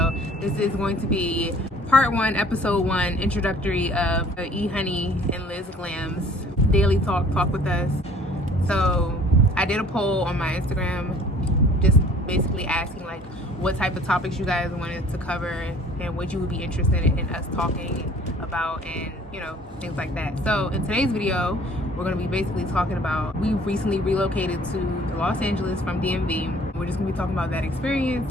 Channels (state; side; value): normal; both; correlation 0.53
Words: This is going to be part 1, episode 1, introductory of the Ehoney and LizzGlams daily talk with us. So I did a poll on my Instagram, just basically asking like what type of topics you guys wanted to cover and what you would be interested in us talking about, and you know, things like that. So in today's video, we're going to be basically talking about, we recently relocated to Los Angeles from DMV. We're just going to be talking about that experience